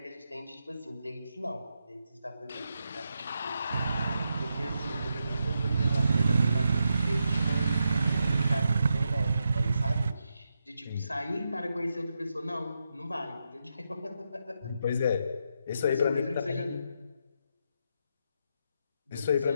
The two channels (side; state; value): both; inverted; correlation -0.84